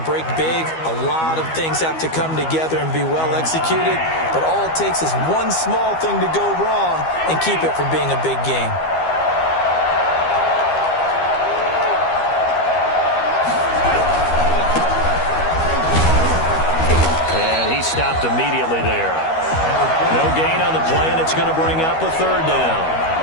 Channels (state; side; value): late; right; 12 ms